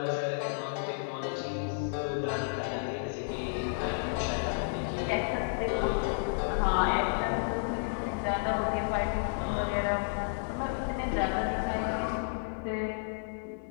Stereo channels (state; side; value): silent; right; digital silence